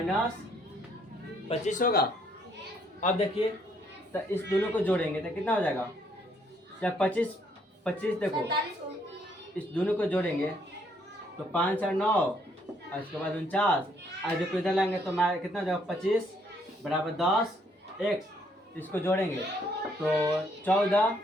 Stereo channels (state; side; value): normal; both; correlation 0.69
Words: 25 होगा। अब देखिए, तो इस दोनों को जोड़ेंगे तो कितना हो जाएगा, जब 25 देखो इस दोनों को जोड़ेंगे तो 5 और 9 और इसके बाद 49, और देखो इधर लाएंगे तो कितना हो जाएगा 25 बराबर 10x, इसको जोड़ेंगे तो 14